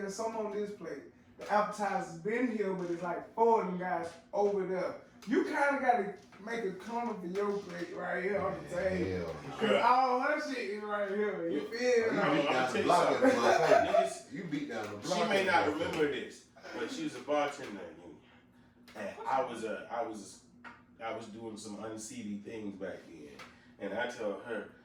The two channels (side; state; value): both; identical; correlation 1.00